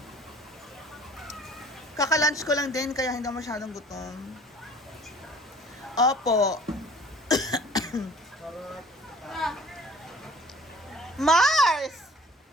Kaka-lunch ko lang din, kaya hindi ako masyadong gutom. Opo. Mars!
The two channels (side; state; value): both; normal; correlation 0.50